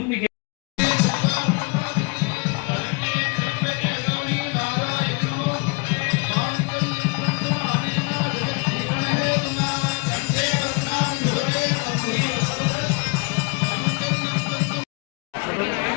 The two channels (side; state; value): right; quieter; 31.1 dB